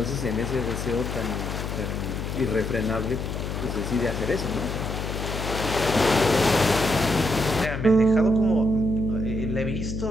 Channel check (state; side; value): noise; left; hum, 4 dB below the sound